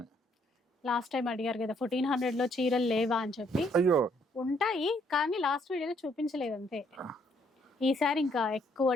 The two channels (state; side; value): normal; both; correlation 0.69